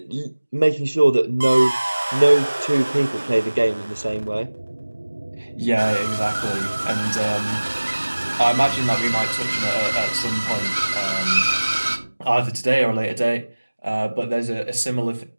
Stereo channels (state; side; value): inverted; both; correlation -1.00